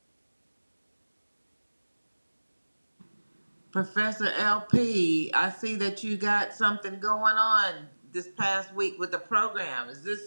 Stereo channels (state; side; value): inverted; both; correlation -1.00